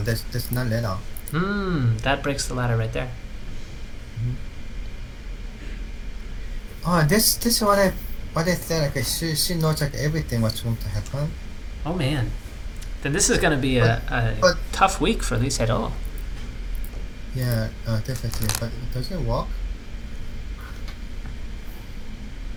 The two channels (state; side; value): identical; both; correlation 1.00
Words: that's not ladder. That breaks the ladder right there. Oh, this is what I said. Like she knows like everything what's going to happen. Oh man, then this is going to be a tough week for Lee Sedol. Yeah, definitely. But it doesn't work.